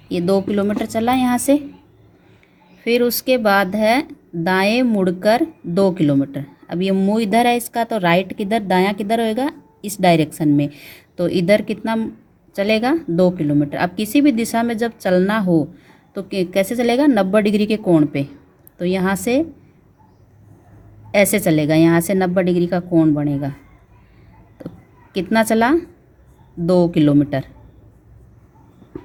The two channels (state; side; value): identical; both; correlation 1.00